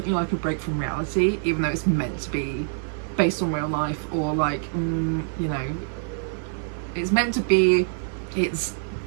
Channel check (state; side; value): silent; left; 62 dB below the other